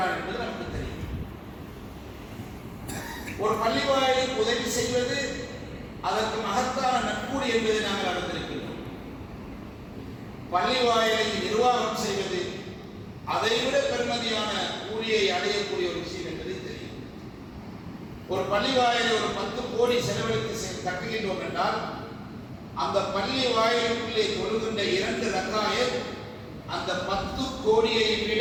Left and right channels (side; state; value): both; identical; correlation 1.00